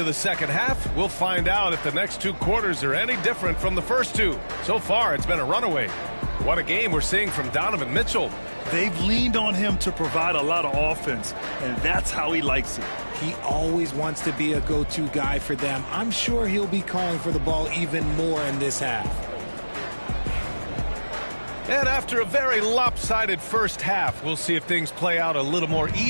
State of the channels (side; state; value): both; inverted; correlation -1.00